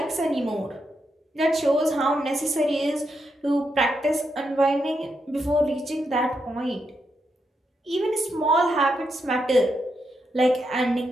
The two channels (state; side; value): normal; both; correlation 0.82